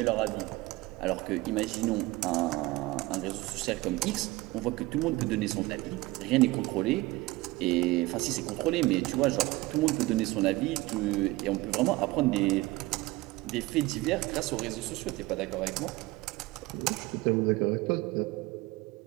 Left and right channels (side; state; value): left; quieter; 20.3 dB